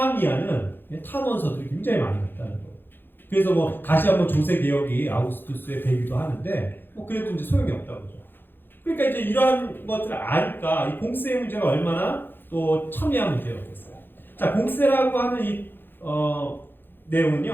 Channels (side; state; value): right; late; 0.099 ms